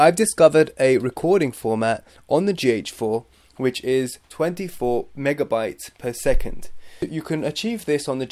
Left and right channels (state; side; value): identical; both; correlation 1.00